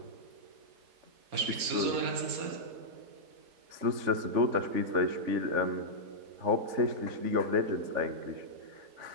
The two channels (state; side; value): late; left; 4.3 ms